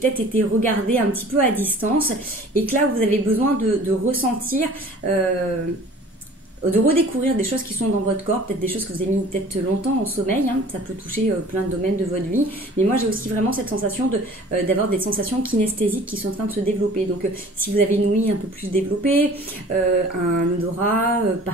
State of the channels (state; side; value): normal; both; correlation 0.47